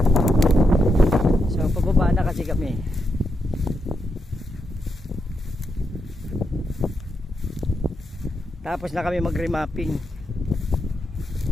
So pababa na kasi kami. Tapos na kami mag-remapping.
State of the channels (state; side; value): normal; both; correlation 0.83